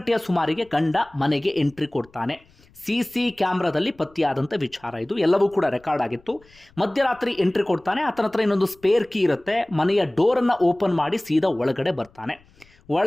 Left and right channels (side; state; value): left; noise; rumble, 30 dB below the sound